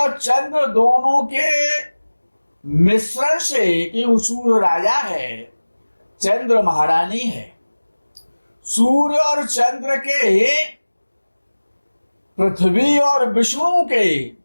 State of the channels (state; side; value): inverted; both; correlation -1.00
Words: चंद्र दोनों के मिश्रण से, कि सूर्य राजा है, चंद्र महारानी है। सूर्य और चंद्र के, पृथ्वी और विष्णु के,